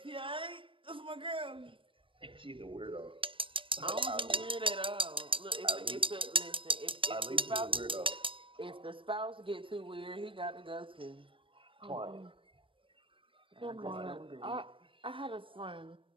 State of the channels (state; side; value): late; left; 0.25 ms